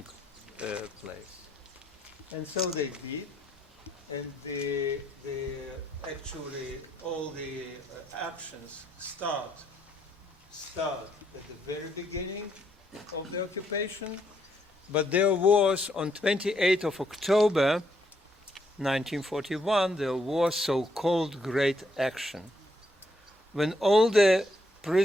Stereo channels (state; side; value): normal; both; correlation 0.74